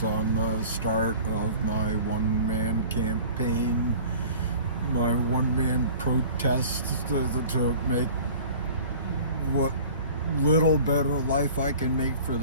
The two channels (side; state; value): both; inverted; correlation -0.44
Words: on the start of my one-man campaign, my one-man protest to make what little better life I can make for